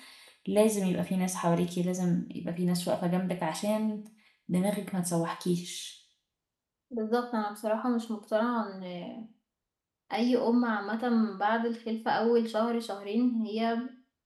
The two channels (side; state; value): both; identical; correlation 1.00